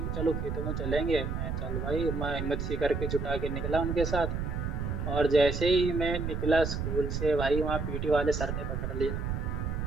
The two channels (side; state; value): right; noise; rumble, 2 dB below the sound